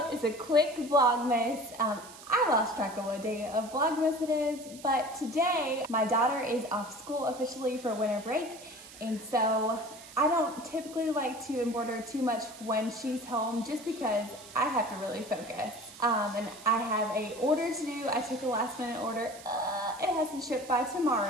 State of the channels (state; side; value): noise; right; hiss, 18 dB below the sound